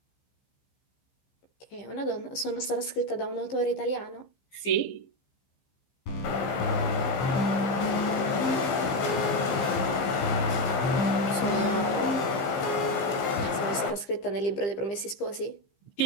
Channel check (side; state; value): right; late; 15 ms